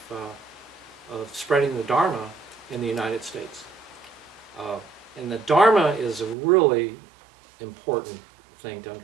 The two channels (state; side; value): drops out; left; at 6.4 s